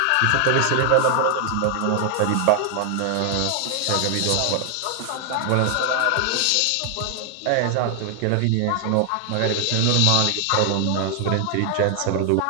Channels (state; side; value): different; both; correlation 0.00